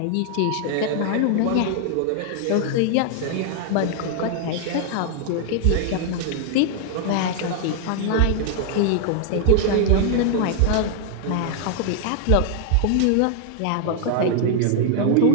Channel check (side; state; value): both; different; correlation 0.00